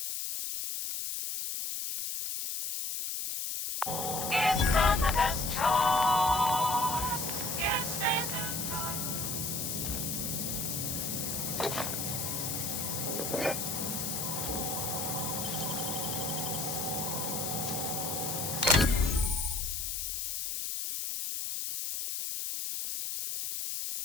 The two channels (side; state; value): left; noise; hiss, 2 dB below the sound